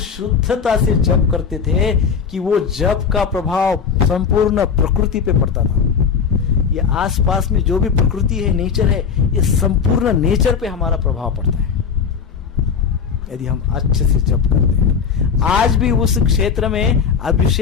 से जप करते थे कि वो जप का प्रभाव संपूर्ण प्रकृति पे पड़ता था। ये आसपास में जो भी प्रकृति है, नेचर है, ये संपूर्ण नेचर पे हमारा प्रभाव पड़ता है यदि हम अच्छे से जप करते हैं। आज भी उस क्षेत्र में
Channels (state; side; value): quieter; right; 6.5 dB